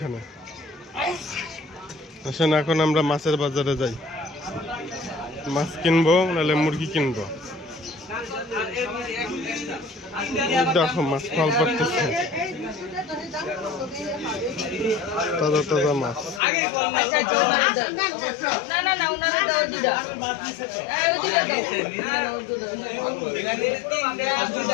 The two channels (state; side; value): drops out; right; at 16.4 s